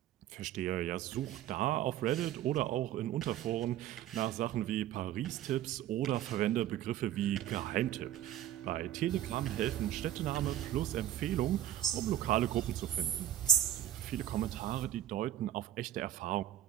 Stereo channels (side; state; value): left; quieter; 12.0 dB